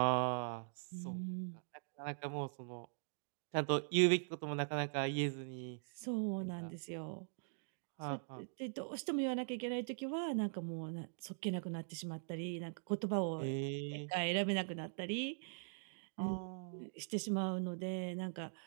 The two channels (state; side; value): silent; left; digital silence